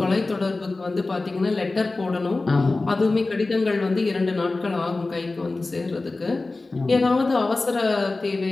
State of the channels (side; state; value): right; quieter; 3.3 dB